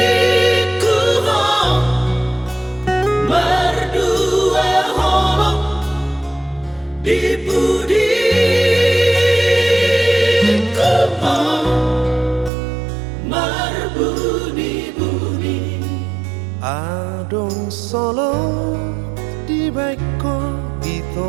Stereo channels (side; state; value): left; drops out; at 12.5 s